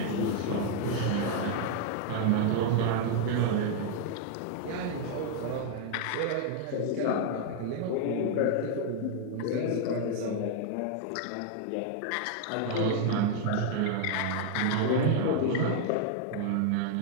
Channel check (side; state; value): both; different; correlation 0.00